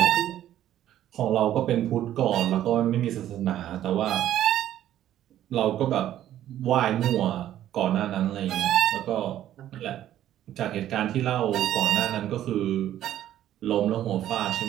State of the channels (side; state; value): left; quieter; 12.1 dB